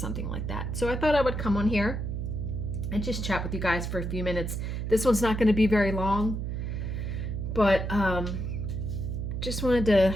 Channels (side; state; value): right; noise; hum, 3 dB below the sound